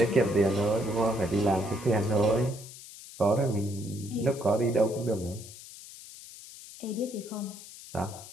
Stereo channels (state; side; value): noise; left; hiss, 16 dB below the sound